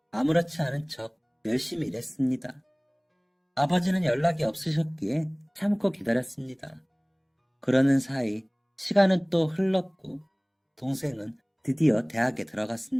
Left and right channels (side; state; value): both; identical; correlation 1.00